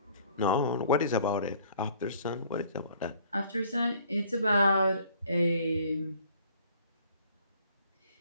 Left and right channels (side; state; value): both; inverted; correlation -0.57